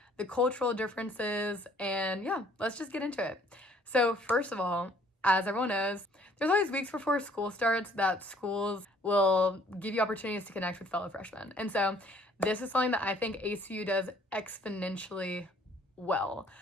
the cultural differences, and yeah, let's just get into it. So first of all, as everyone knows, there's always weeks before school starts that schools will give you opportunities to connect with fellow freshmen. And so this is something that I think ACU does exponentially well.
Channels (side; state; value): both; normal; correlation 0.59